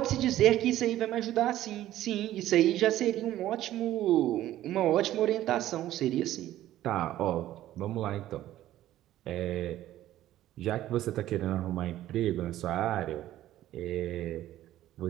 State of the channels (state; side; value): quieter; left; 13.7 dB